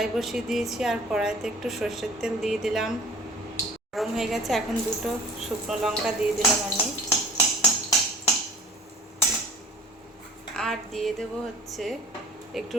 বসিয়ে দিয়েছি, আর কড়াইতে একটু সর্ষের তেল দিয়ে দিলাম। গরম হয়ে গেছে, এখন 2টো শুকনো লঙ্কা দিয়ে দিলাম আমি। আর দিয়ে দেবো হচ্ছে একটু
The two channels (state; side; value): normal; both; correlation 0.46